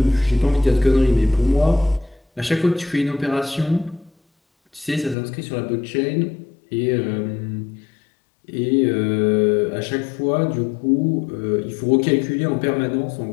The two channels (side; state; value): right; drops out; at 5.2 s